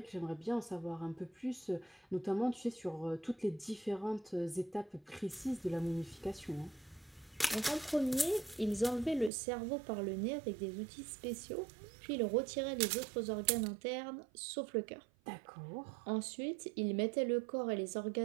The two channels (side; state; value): left; drops out; at 9.3 s